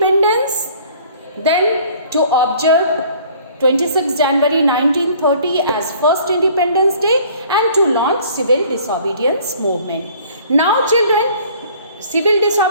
then to observe 26 January 1930 as first Independence Day, and to launch civil disobedience movement. Now children, civil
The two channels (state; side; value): inverted; both; correlation -0.53